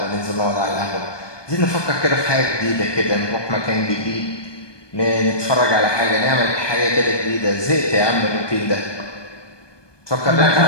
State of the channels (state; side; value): late; right; 1.2 ms